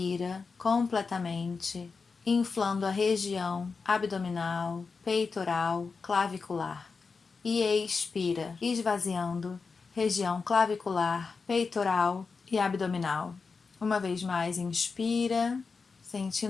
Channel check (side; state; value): right; quieter; 4.8 dB